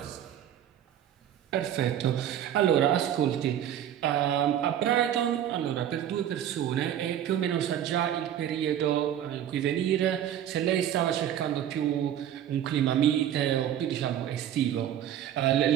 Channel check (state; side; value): quieter; left; 10.5 dB